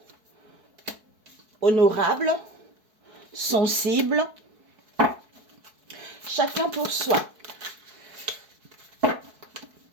honorable, sensible, chacun pour soi.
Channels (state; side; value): late; left; 4.6 ms